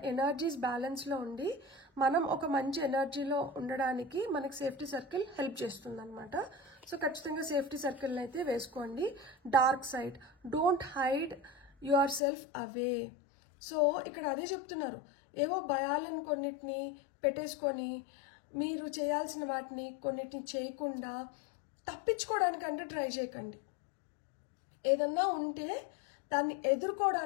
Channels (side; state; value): right; drops out; at 12.2 s